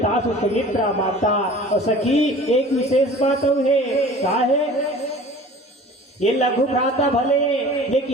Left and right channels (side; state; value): both; normal; correlation 0.44